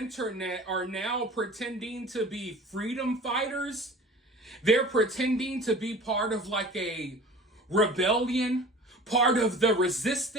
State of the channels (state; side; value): normal; both; correlation 0.42